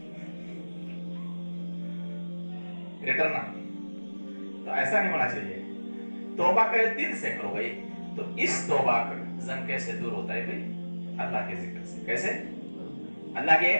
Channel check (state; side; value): inverted; both; correlation -1.00